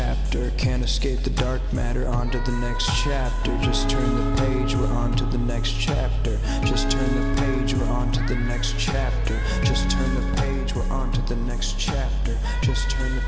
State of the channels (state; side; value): identical; both; correlation 1.00